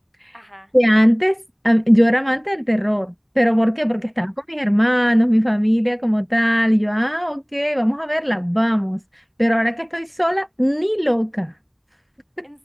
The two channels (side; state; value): both; identical; correlation 1.00